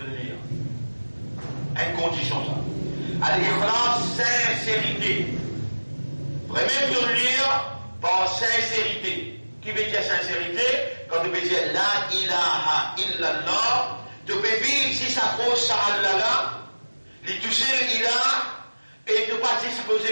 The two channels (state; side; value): inverted; both; correlation -1.00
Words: lire. Une condition ça. Al-ikhlas, sincérité. Vraiment de lire par sincérité. Qui veut dire sincérité? Quand tu veux dire la ilaha illallah, tu peux vivre si ça pose ça Allah là, les toucher l'ilah, et tu ne pas